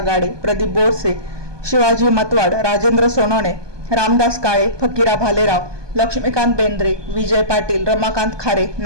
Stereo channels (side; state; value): left; late; 1.2 ms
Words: गाडे, प्रदीप बोरसे, शिवाजी मतवाड, राजेंद्र सोनवणे, रामदास काळे, फकीरा भालेराव, लक्ष्मीकांत बेंद्रे, विजय पाटील, रमाकांत खारे,